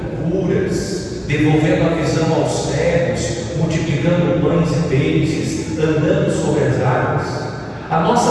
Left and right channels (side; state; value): both; identical; correlation 1.00